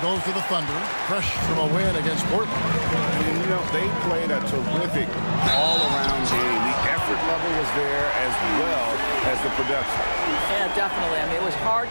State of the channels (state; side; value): inverted; both; correlation -1.00